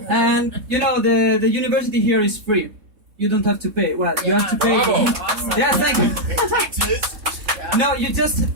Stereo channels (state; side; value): late; left; 3.7 ms